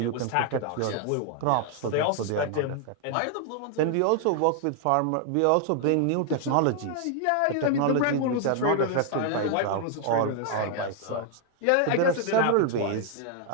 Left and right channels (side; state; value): both; different; correlation 0.00